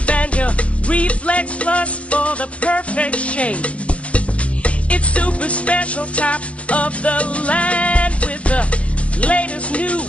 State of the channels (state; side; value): late; right; 0.063 ms